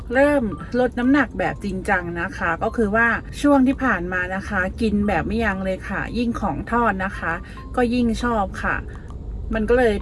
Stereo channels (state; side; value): identical; both; correlation 1.00